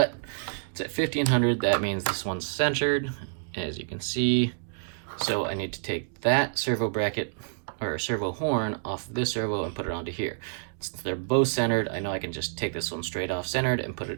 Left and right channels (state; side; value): silent; left; digital silence